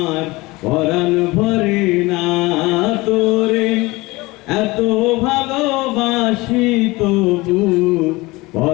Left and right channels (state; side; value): quieter; right; 22.0 dB